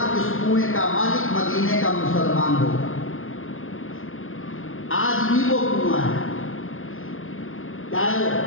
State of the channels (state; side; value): late; right; 0.60 ms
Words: اس کنویں کا مالک مدینے کا مسلمان ہوگا۔ آج بھی وہ کنواں ہے۔ کیا ہے وہ؟